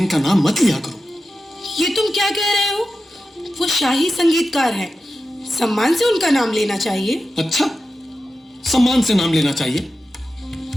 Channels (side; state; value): both; normal; correlation 0.92